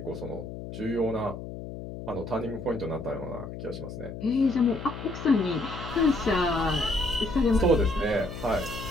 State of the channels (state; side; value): noise; left; hum, 9 dB below the sound